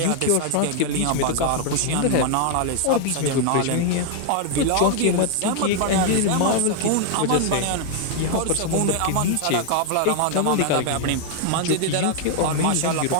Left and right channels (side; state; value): both; different; correlation 0.00